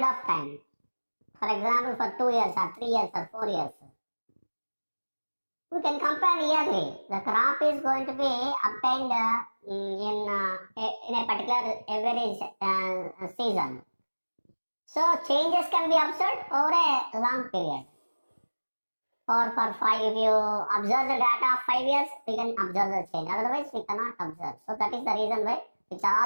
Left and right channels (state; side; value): inverted; both; correlation -1.00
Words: of time. For example, for 2 years or 3 years or 4 years. We can compare yearly. The crop is going to be obtained in a particular average season. So changes can be observed over a long period. Or for 5, if you observe the data of 5 years, we can observe the change. Otherwise, we cannot observe. So that is the reason why it